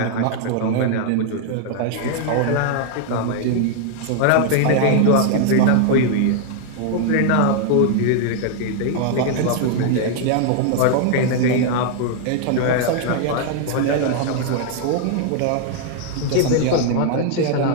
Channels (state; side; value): different; both; correlation 0.00